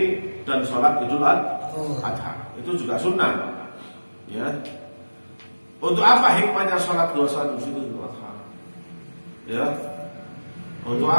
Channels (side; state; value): both; inverted; correlation -1.00